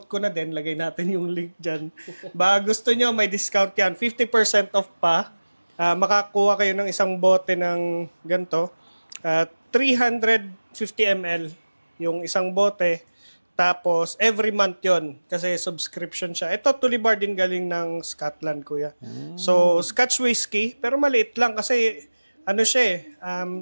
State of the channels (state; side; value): inverted; both; correlation -1.00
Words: ko na din, lagay natin yung link dyan. Baka gusto nyo, may discount yan. 50% off pa. Makakuha kayo ng isang bote ng ganito. 350 ml yung isang bote. Tapos, every month yon kasi subscription siya. Ito, Tulibar din galing ng Scotland, kuya. So, Scotch whiskey, pero maliit lang kasi, siya